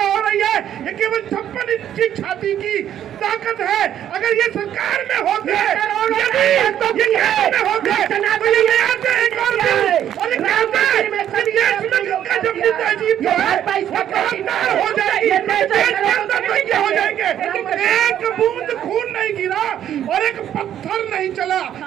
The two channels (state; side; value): quieter; left; 10.6 dB